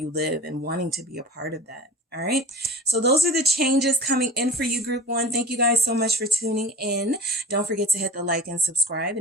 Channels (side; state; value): both; normal; correlation 0.37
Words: live and wanting to be a part of that. All right. So those are the changes coming in for you, group 1. Thank you guys so much for tuning in. Don't forget to hit the like and subscribe.